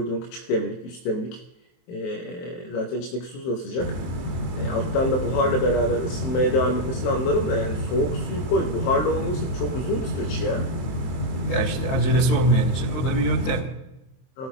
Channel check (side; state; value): right; late; 23 ms